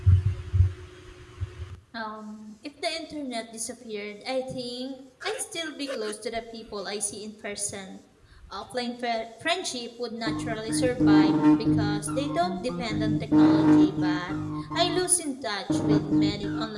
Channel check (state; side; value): identical; both; correlation 1.00